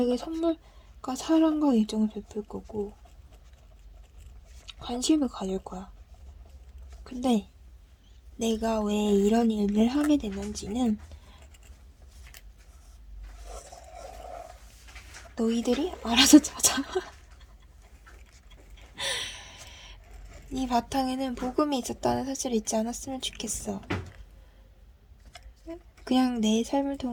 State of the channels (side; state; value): both; identical; correlation 1.00